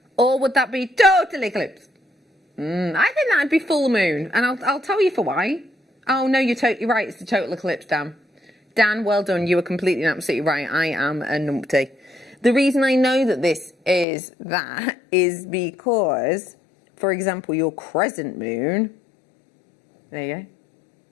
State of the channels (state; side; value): drops out; right; at 14.1 s